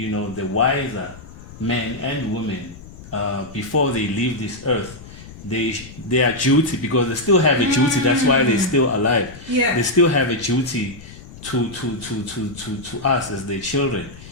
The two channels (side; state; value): left; noise; rumble, 17 dB below the sound